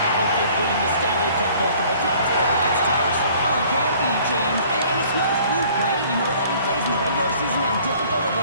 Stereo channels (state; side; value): inverted; both; correlation -0.54